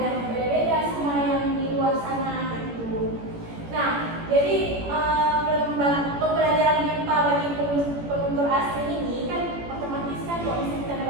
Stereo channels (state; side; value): late; left; 18 ms